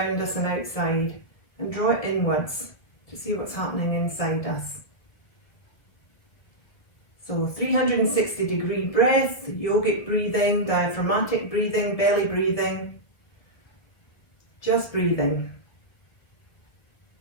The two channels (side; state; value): right; late; 2.0 ms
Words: us and outside, and draw it inwards to see what's happening inside us. So 360-degree breath, yogic breathing, diaphragmatic breathing, belly breathing, just breathing.